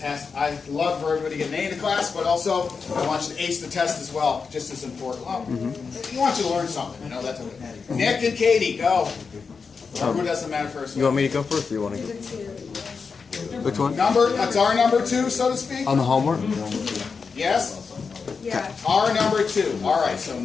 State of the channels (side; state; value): right; quieter; 5.2 dB